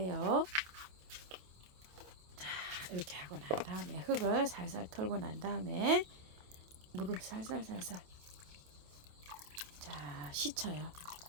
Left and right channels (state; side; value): late; left; 28 ms